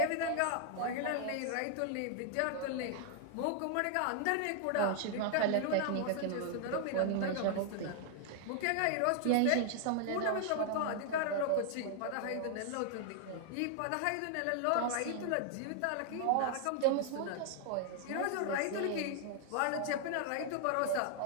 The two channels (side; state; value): both; different; correlation 0.00